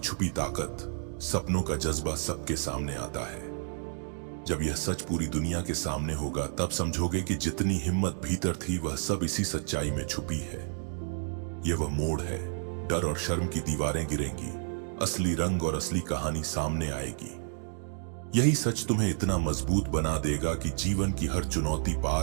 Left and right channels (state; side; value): silent; left; 57 dB below the other